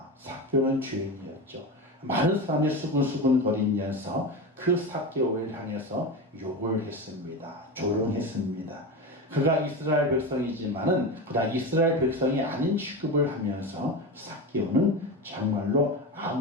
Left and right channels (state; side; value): normal; both; correlation 0.22